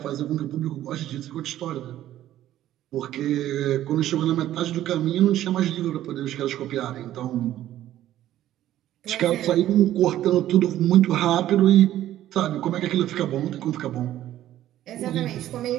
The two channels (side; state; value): left; quieter; 13.0 dB